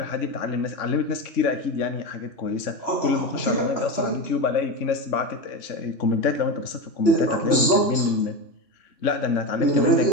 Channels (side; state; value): right; late; 3.0 ms